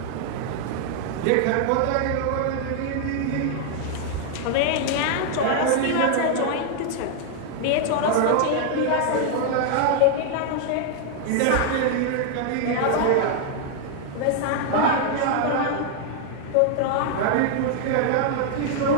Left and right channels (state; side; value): different; both; correlation 0.00